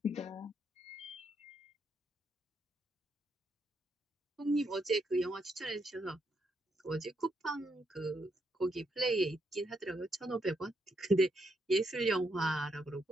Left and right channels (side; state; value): both; normal; correlation 0.78